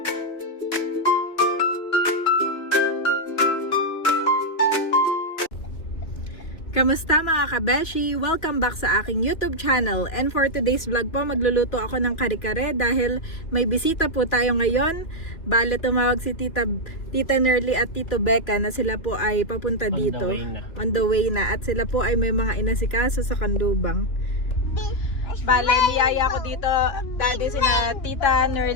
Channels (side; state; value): right; late; 2.7 ms